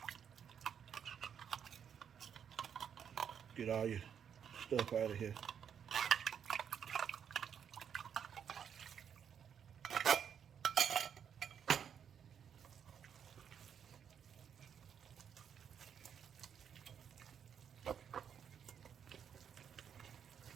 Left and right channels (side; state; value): left; quieter; 8.0 dB